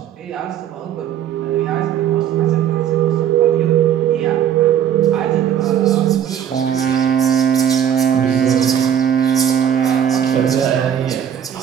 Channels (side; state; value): left; quieter; 9.4 dB